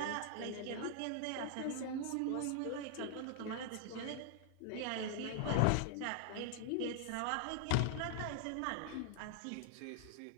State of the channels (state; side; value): different; both; correlation 0.00